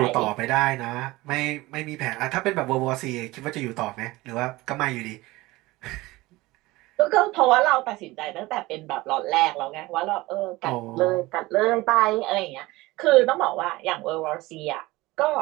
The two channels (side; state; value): left; quieter; 20.0 dB